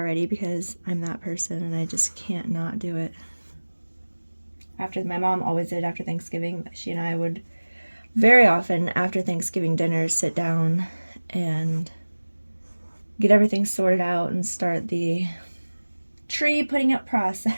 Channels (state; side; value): inverted; both; correlation -1.00